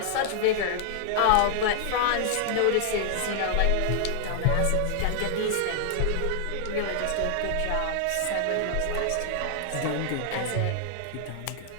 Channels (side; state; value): both; different; correlation 0.00